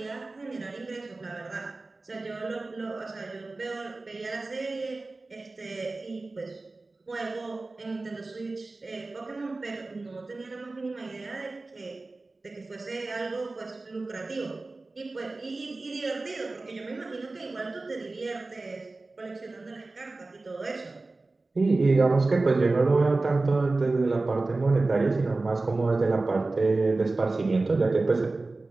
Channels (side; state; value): left; quieter; 3.3 dB